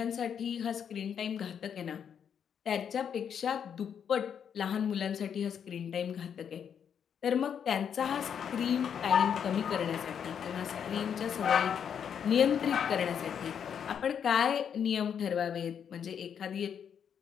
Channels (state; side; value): quieter; right; 8.0 dB